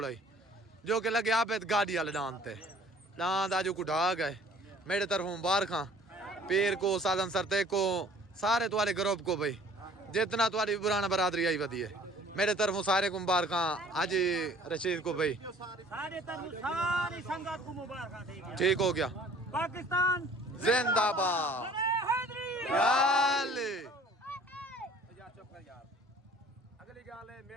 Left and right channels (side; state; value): both; normal; correlation 0.52